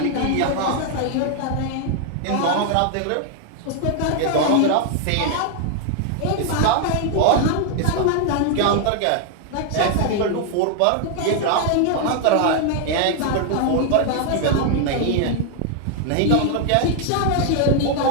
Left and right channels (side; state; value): both; different; correlation 0.00